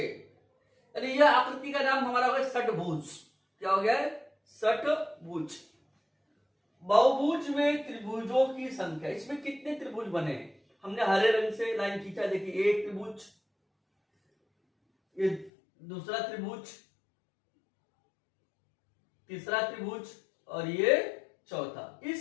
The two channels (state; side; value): drops out; right; at 15.5 s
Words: यानी यह आकृति का नाम हमारा हो गया षटभुज। क्या हो गया है, षटभुज। बहुभुज में त्रिभुजों की संख्या, इसमें कितने त्रिभुज बने, हमने हरे रंग से लाइन खींचा, देखिए एक त्रिभुज, ये दूसरा त्रिभुज, तीसरा त्रिभुज और ये चौथा।